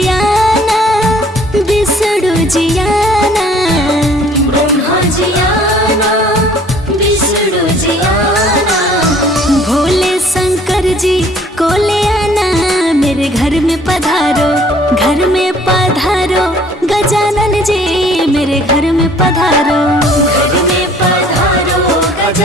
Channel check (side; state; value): both; normal; correlation 0.56